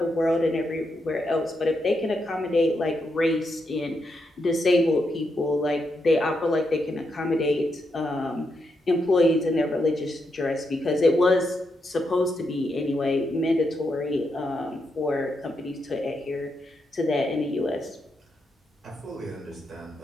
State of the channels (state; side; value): normal; both; correlation 0.82